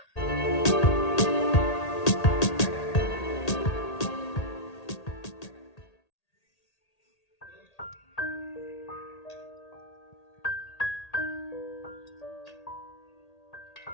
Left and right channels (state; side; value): late; right; 1.8 ms